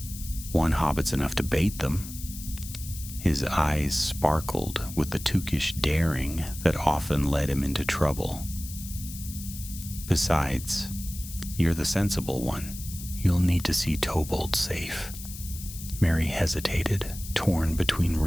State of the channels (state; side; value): noise; left; hiss, 12 dB below the sound